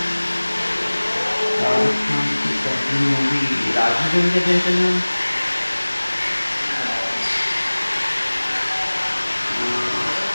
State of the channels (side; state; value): both; inverted; correlation -1.00